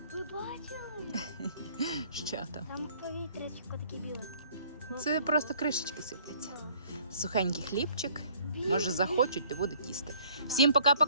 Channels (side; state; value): both; inverted; correlation -0.57